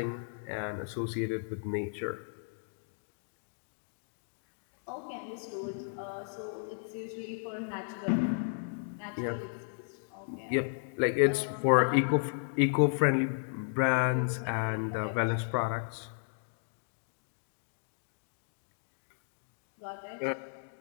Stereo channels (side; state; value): right; silent; digital silence